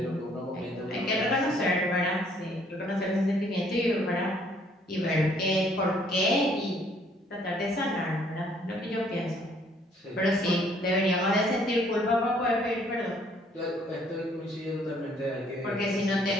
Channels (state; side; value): normal; both; correlation 0.63